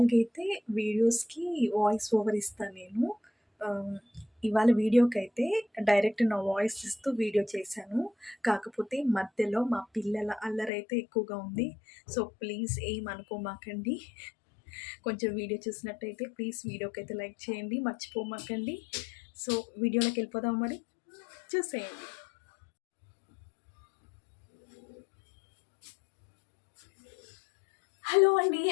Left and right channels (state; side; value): drops out; right; at 10.7 s